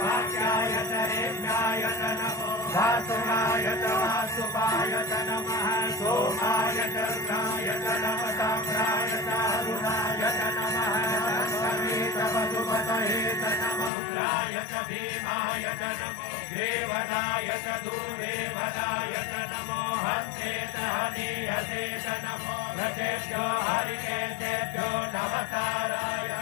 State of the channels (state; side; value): drops out; right; at 13.9 s